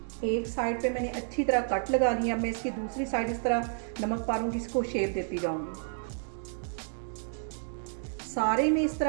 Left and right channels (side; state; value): left; silent; digital silence